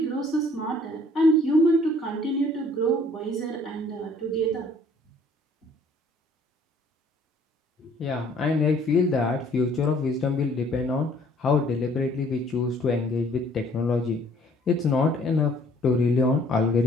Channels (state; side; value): normal; both; correlation 0.58